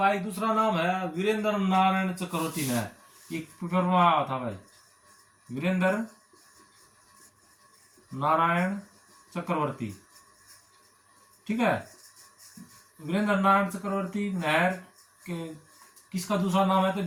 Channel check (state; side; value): identical; both; correlation 1.00